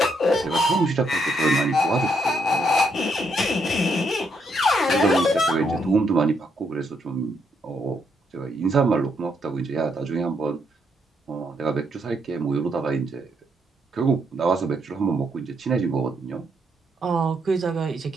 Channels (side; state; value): both; normal; correlation 0.76